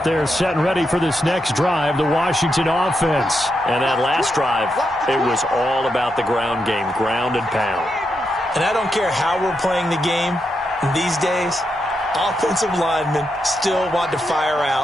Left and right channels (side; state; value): both; normal; correlation 0.84